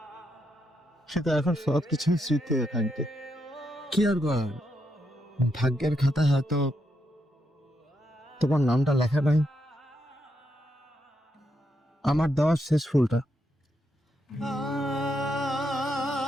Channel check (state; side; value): normal; both; correlation 0.81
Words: সেটা এখন সবকিছু স্মৃতি হয়ে থাকবে। কি আর করার, ভাগ্যের খাতায় হয়তো তোমার নামটা লেখা নাই। আমার দেওয়ার শেষ ফুলটা।